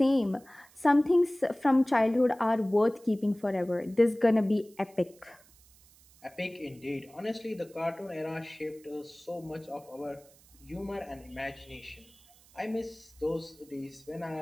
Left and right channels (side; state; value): right; noise; hiss, 27 dB below the sound